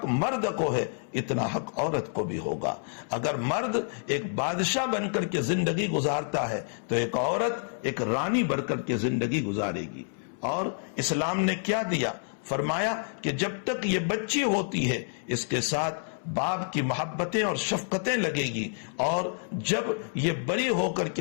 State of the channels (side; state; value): right; silent; 59 dB below the other